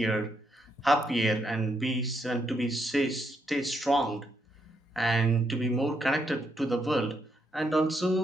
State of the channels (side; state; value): both; normal; correlation 0.78